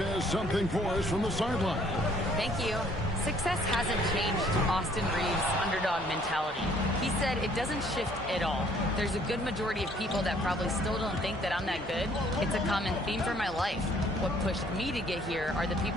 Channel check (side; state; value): both; normal; correlation 0.61